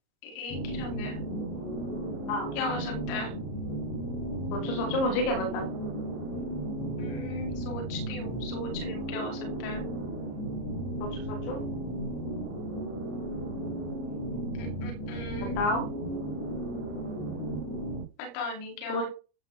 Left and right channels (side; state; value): right; late; 33 ms